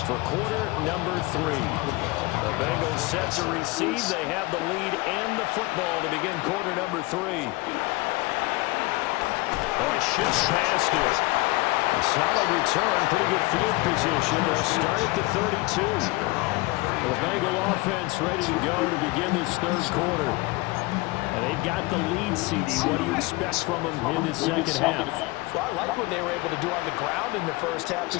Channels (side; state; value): right; quieter; 22.9 dB